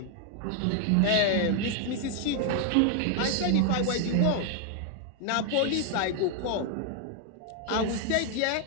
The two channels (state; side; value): different; both; correlation 0.00